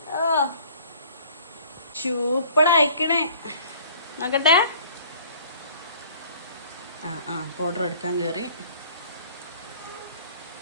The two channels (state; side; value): inverted; both; correlation -0.53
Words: സൂപ്പറായിക്കണേ. നോക്കട്ടെ. പൗഡർ എടുക്കാൻ കയറി.